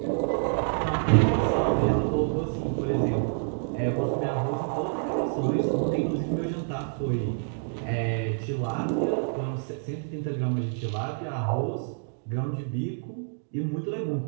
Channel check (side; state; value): left; silent; digital silence